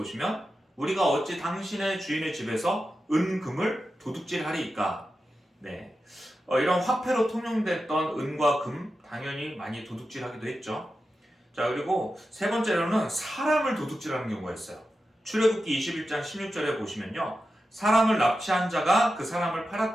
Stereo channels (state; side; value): normal; both; correlation 0.91